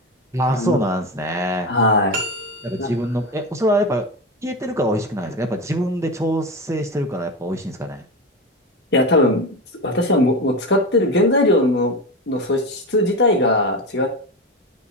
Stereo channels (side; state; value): both; normal; correlation 0.21